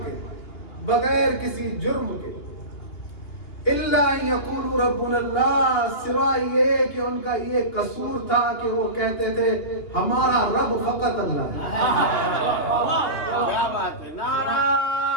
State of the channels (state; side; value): late; right; 2.8 ms